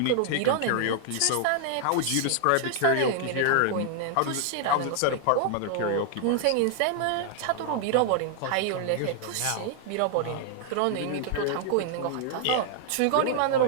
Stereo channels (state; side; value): different; both; correlation 0.00